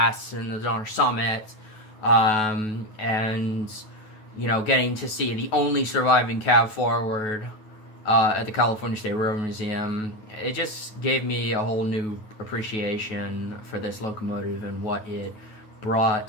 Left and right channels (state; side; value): late; right; 9.3 ms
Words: and the Donner Summit, and, you know, getting to see the only surviving cab forward at the California State Railroad Museum, it just gave me a whole new appreciation for this locomotive and what it